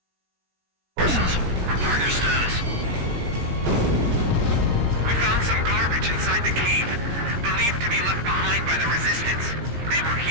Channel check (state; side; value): late; left; 17 ms